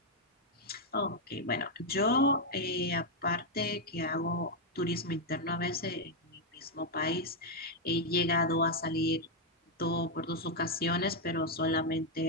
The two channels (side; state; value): both; normal; correlation 0.01